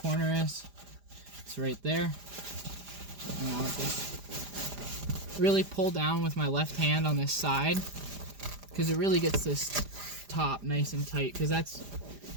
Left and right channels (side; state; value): left; late; 4.9 ms